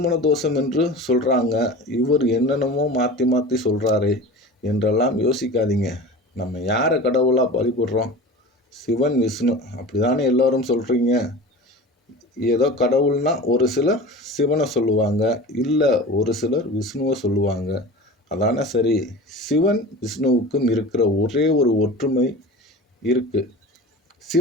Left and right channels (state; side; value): normal; both; correlation 0.35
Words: தோஷம் என்று சொல்கிறாங்க, இவர் என்னென்னமோ மாற்றி மாற்றி சொல்கிறாரே என்றெல்லாம் யோசிக்காதீங்க. நம்ம யாரை கடவுளாக வழிபடுறோம்? சிவன், விஷ்ணு, அப்படி தானே எல்லோரும் சொல்கிறீங்க. ஏதோ கடவுள்னா ஒரு சிலர் சிவனை சொல்லுவாங்க, இல்லை ஒரு சிலர் விஷ்ணுவை சொல்லுவாங்க. அதானே சரி. சிவன் விஷ்ணுவுக்கும் இருக்கிற ஒரே ஒரு ஒற்றுமை இருக்குது.